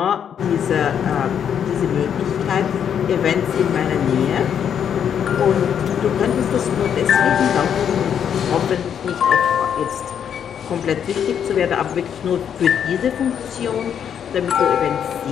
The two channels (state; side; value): quieter; right; 8.4 dB